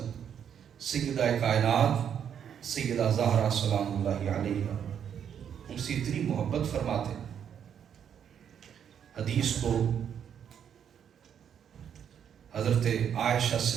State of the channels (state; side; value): quieter; left; 8.5 dB